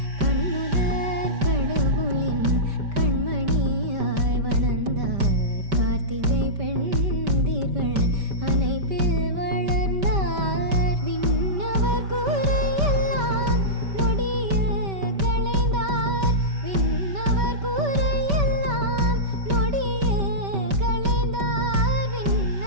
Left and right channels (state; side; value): late; left; 5.1 ms